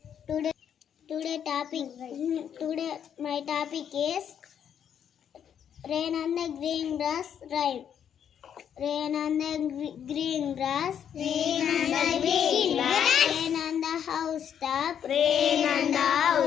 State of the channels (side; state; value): right; quieter; 8.7 dB